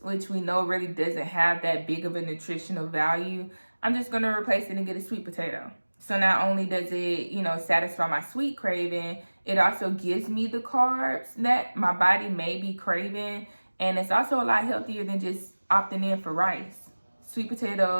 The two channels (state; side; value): inverted; both; correlation -1.00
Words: which we know really doesn't have that big of a nutritional value, I'm just going to replace it and get a sweet potato. So not only does it, you know, satisfy my sweet craving, it also gives me the carbs that my body may be craving. And it's also a lot healthier than just opting in for rice. Sweet